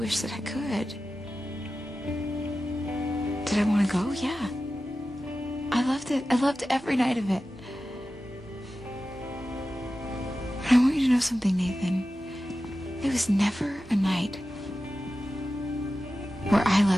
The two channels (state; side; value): normal; both; correlation 0.94